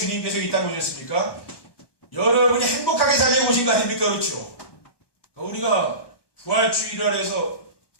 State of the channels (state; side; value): late; right; 1.2 ms